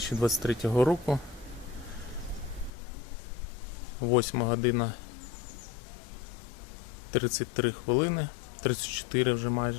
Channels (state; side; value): drops out; right; at 2.7 s